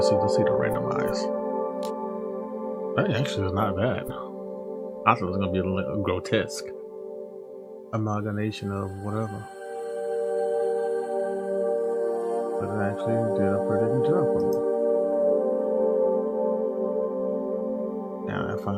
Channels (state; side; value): identical; both; correlation 1.00